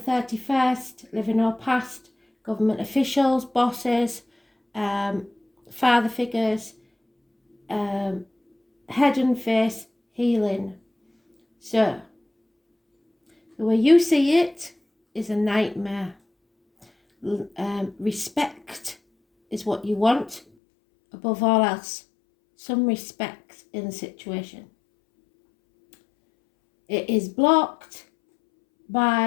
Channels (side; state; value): right; drops out; at 20.4 s